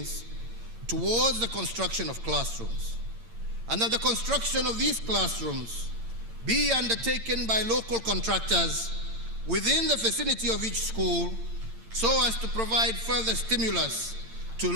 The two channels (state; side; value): late; left; 8.8 ms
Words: towards the construction of classrooms, and that the construction of these classrooms be undertaken by local contractors within the vicinity of each school so as to provide further stimulus to